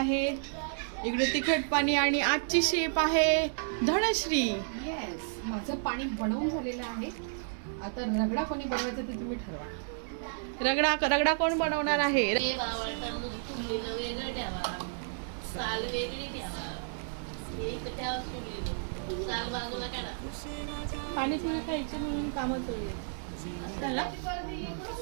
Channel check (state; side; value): silent; left; digital silence